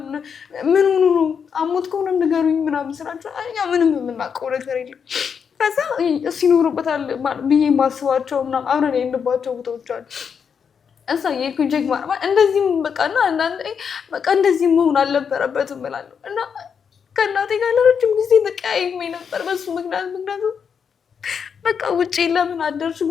ምን ሆኖ ነው? አሞት ከሆነ ንገሩኝ ምናምን ስላቸው እኛ ምንም የምናውቀው ነገር የለም። ከዛ እሱ ይኖሩበታል ብዬ የማስባቸው ምናምን አብረን የሄድንባቸው ቦታዎች አሉ። እዛ የኩኝ ቼክ ማለት እንደዚህም በቃና አንዳንዴ በቃ እንደዚህ መሆን አልነበረበትም እላለሁ። እና ከእናቴ ጋር ለረጅም ጊዜ ተቀያይሜ ነበር በሱ ምክንያቱም በቃ ውጪ ለምን አደርሽ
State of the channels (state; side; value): quieter; right; 6.8 dB